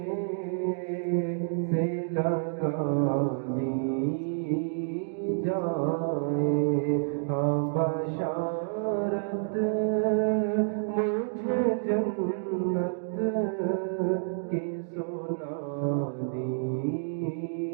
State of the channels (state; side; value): silent; left; digital silence